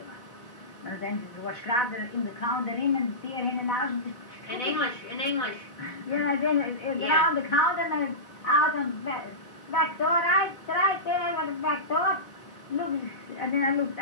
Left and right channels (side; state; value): right; late; 4.1 ms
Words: Maar dan was graag in de counter in en die in en uit. In English. Yeah, then around the counter and out and back door, right there was the back door. Look, and then I looked